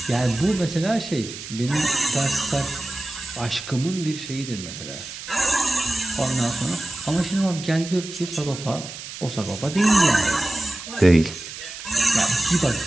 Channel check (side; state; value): right; noise; hiss, 11 dB below the sound